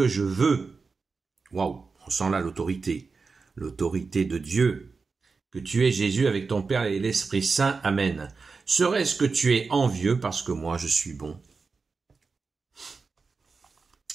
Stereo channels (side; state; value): left; quieter; 4.5 dB